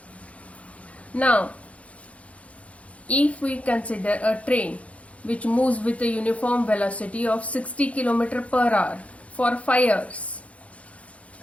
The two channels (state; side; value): late; right; 0.064 ms